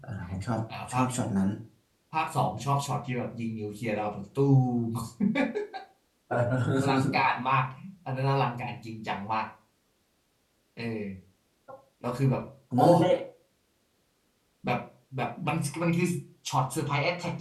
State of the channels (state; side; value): identical; both; correlation 1.00